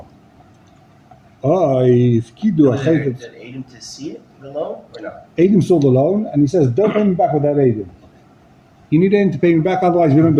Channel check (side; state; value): both; identical; correlation 1.00